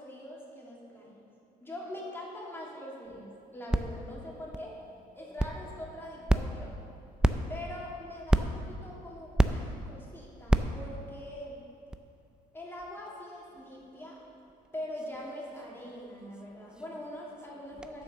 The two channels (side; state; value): both; normal; correlation 0.89